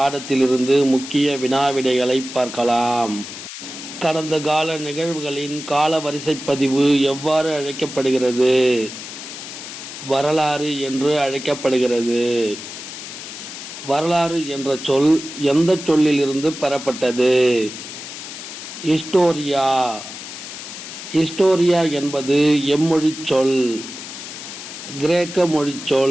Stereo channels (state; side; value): noise; left; hiss, 11 dB below the sound